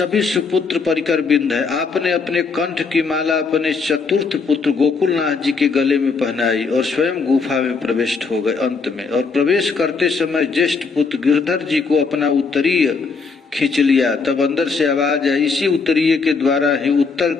सुपुत्र परिकर बिंद है। आपने अपने कंठ की माला अपने चतुर्थ पुत्र गोकुलनाथ जी के गले में पहनाई और स्वयं गुफा में प्रविष्ट हो गए अंत में। और प्रवेश करते समय ज्येष्ठ पुत्र गिरधर जी को अपना उत्तरीय खींच लिया, तब अंदर से आवाज आई, इसी उत्तरीय के द्वारा ही उत्तर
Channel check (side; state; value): right; quieter; 4.8 dB